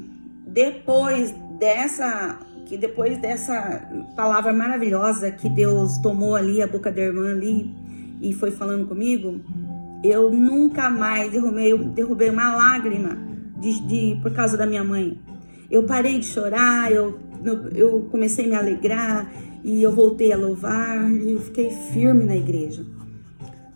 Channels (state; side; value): inverted; both; correlation -1.00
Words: depois dessa palavra maravilhosa que Deus tomou ali a boca da irmã ali e foi falando comigo, eu nunca mais derrubei uma lágrima por causa da minha mãe. Eu parei de chorar, eu comecei a me alegrar e eu voltei a louvar e eu fiquei firme na igreja.